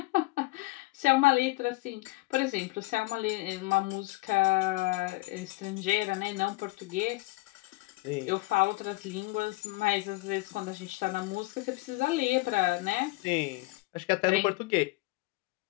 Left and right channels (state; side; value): quieter; right; 22.7 dB